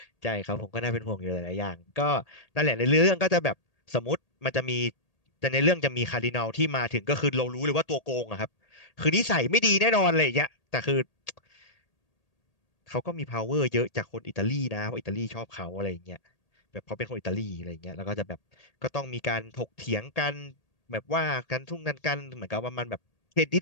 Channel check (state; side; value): late; right; 1.8 ms